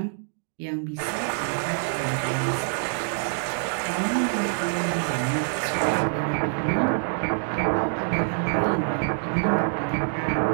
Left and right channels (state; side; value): silent; left; digital silence